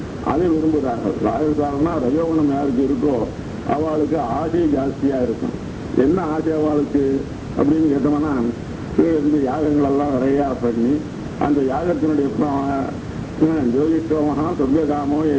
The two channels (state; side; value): identical; both; correlation 1.00